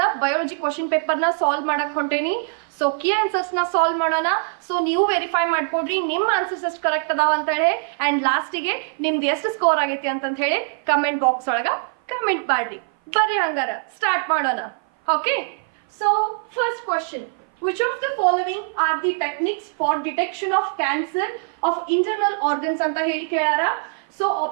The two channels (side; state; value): left; silent; 56 dB below the other